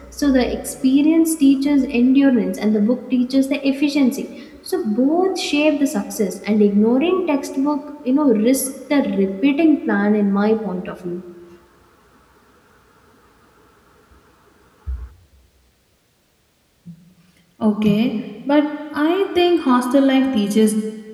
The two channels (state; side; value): identical; both; correlation 1.00